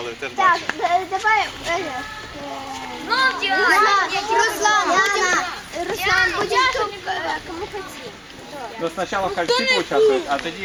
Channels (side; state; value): both; identical; correlation 1.00